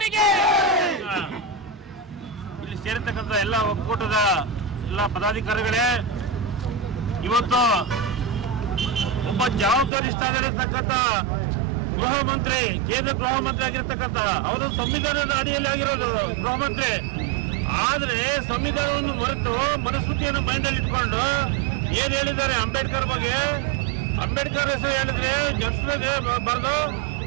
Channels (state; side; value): drops out; left; at 9.9 s